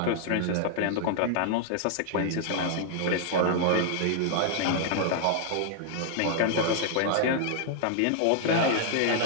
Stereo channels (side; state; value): both; different; correlation -0.01